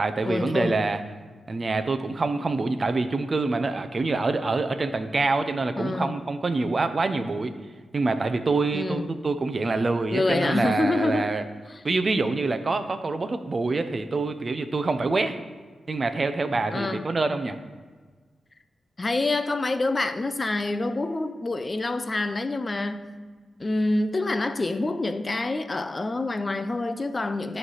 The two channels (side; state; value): both; normal; correlation 0.91